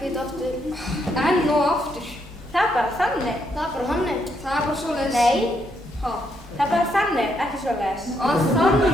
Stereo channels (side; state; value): both; normal; correlation 0.76